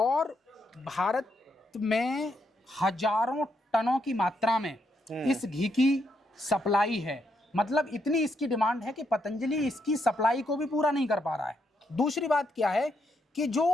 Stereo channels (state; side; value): normal; both; correlation 0.78